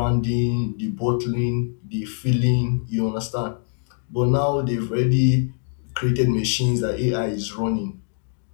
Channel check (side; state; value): right; silent; 63 dB below the other